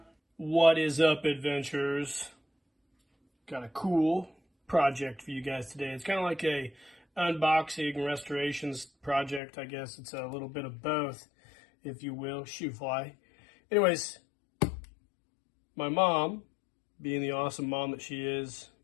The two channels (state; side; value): drops out; right; at 9.4 s